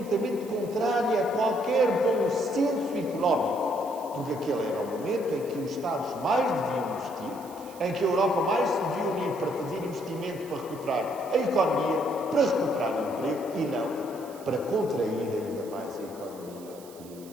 contrária a qualquer bom senso económico, porque aquele era o momento em que os Estados mais deviam investir, em que a Europa mais se devia unir para fazer investimento para recuperar a economia, para recuperar o emprego, e não para contrair ainda mais a economia e o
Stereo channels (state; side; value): noise; right; hiss, 21 dB below the sound